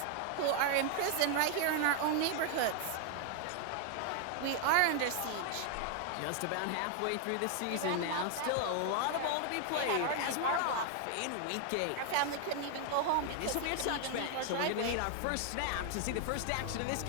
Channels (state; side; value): different; both; correlation 0.00